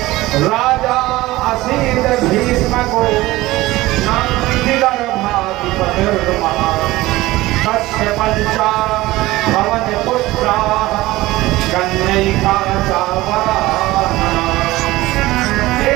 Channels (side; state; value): left; quieter; 18.3 dB